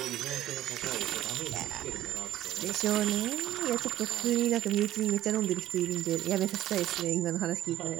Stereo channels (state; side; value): quieter; left; 13.4 dB